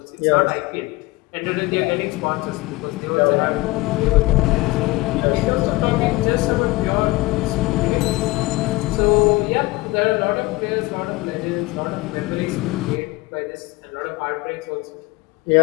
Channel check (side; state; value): right; quieter; 20.8 dB